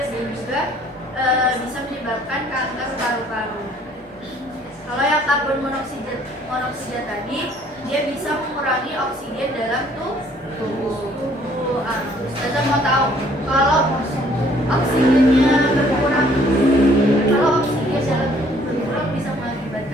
dan juga bisa menyebabkan kanker paru-paru. Kalau yang karbon monoksida tadi, dia bisa mengurangi oksigen dalam tubuh. Ustazah mau tahu kalau oksigennya berkurang, kalau oksigen dalam tubuh berkurang bisa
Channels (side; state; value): both; normal; correlation 0.60